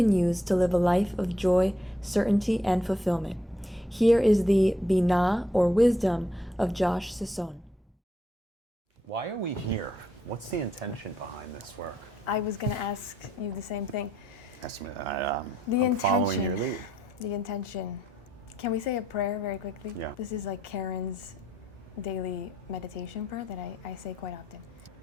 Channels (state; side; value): normal; both; correlation 0.74